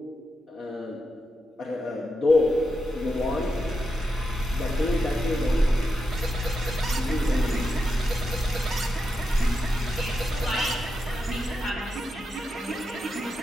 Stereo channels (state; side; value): normal; both; correlation 0.87